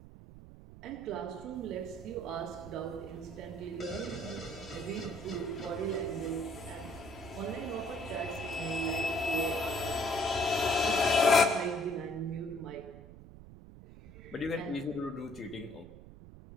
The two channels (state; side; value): noise; right; rumble, 17 dB below the sound